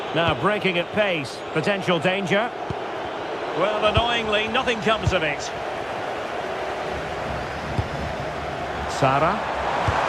Now breaking at pace. Potential danger. Well, annoyingly, nothing comes of it. Sara.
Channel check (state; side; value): identical; both; correlation 1.00